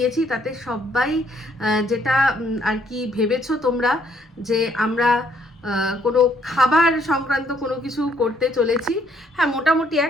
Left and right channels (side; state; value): both; normal; correlation 0.68